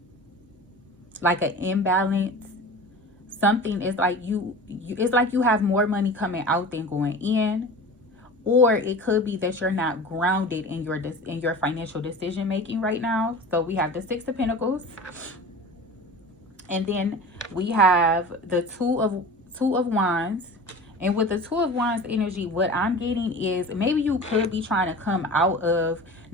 Like an imbalance. Something is like it's like you have more money coming out than going in. Or it could be that you're not grounded in your financial decision making right now. So we have the 6 of Pentacles, and then we have the two of Wands. And with the 2 of Wands energy, what I'm getting is maybe you could be trying to come out of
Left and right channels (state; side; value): normal; both; correlation 0.36